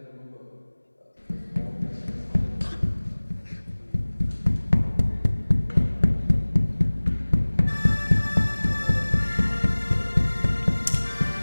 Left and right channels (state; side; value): inverted; both; correlation -1.00